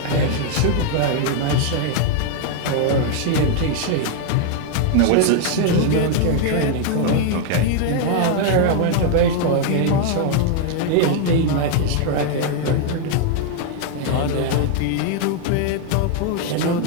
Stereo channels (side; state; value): both; different; correlation 0.00